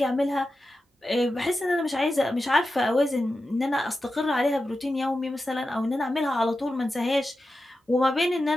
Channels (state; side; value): normal; both; correlation 0.91